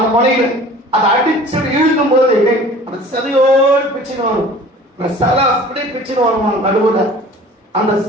முனையில, அதை அடிச்சு இழுக்கும் போது அந்த சதையோடு பிச்சுன்னு வரும். அந்த சலை அப்படியே பிச்சுன்னு வருமா நடுவுல. அந்த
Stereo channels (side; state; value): both; normal; correlation 0.46